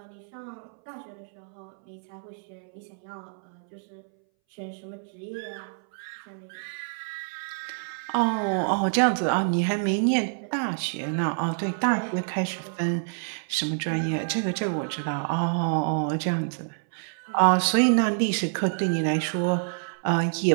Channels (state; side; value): silent; left; 60 dB below the other